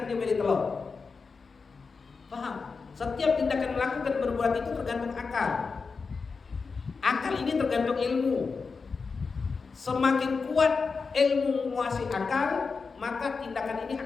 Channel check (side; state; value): right; quieter; 4.8 dB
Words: dia milih telur. Paham? Setiap tindakan melakukan berbuat itu tergantung akal. Akal ini tergantung ilmu. Semakin kuat ilmu menguasai akal, maka tindakan ini